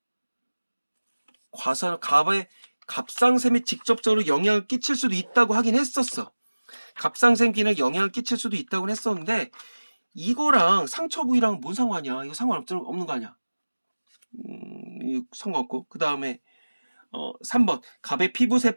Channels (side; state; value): both; inverted; correlation -1.00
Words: 갑의 갑상샘에 직접적으로 영향을 끼칠 수도 있다고 하긴 했었어. 갑상샘 기능에 영향을 끼칠 수도 있다고 했었는데 이거랑 상처 부위랑 뭔 상관이야? 이거 상관없는 거 아니야? 이거 상관없고. 그 다음에 3번 갑의